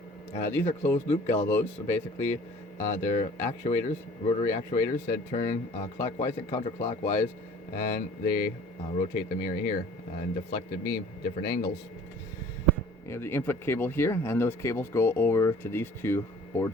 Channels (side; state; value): both; normal; correlation 0.49